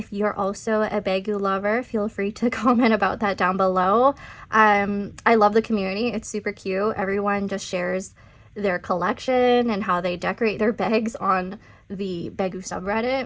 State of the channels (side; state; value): both; identical; correlation 1.00